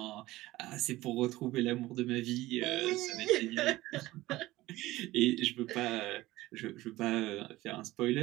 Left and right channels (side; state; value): left; quieter; 17.7 dB